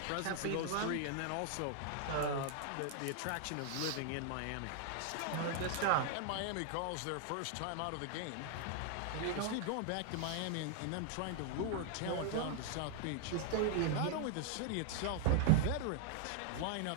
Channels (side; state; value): both; different; correlation -0.01